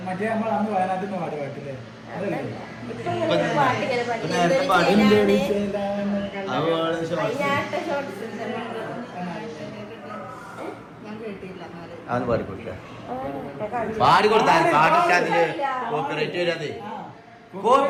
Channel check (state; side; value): identical; both; correlation 1.00